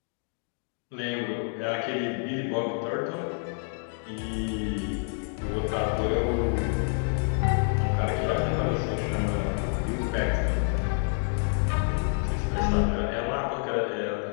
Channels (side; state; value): right; silent; 59 dB below the other